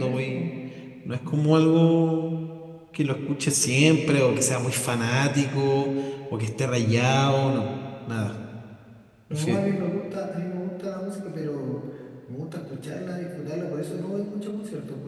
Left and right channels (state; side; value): identical; both; correlation 1.00